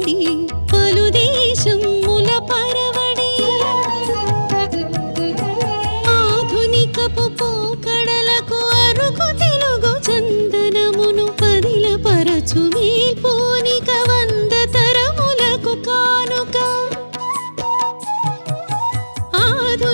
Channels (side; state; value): both; inverted; correlation -1.00